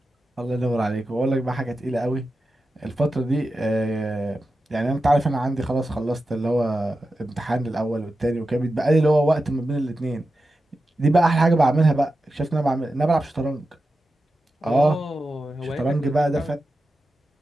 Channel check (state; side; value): normal; both; correlation 0.91